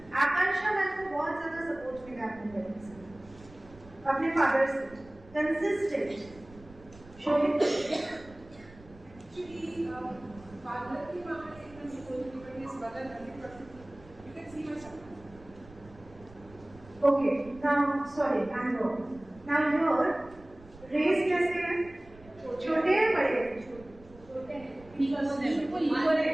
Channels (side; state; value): right; noise; rumble, 22 dB below the sound